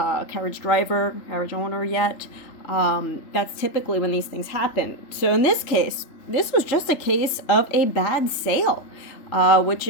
carriage driver, carriage owner yet. That's typically when these things happen. So in this case, this was just a case of a bad sale, which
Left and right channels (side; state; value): right; late; 3.4 ms